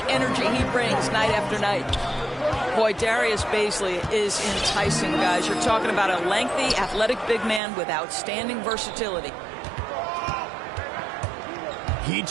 energy he brings night after night. Boy, Darius Bazley is enticing, guys. You're talking about a lengthy, athletic big man with outstanding versatility. He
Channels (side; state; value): left; drops out; at 7.6 s